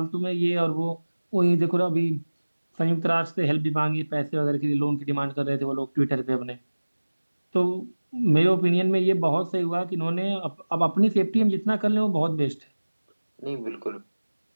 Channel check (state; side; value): inverted; both; correlation -1.00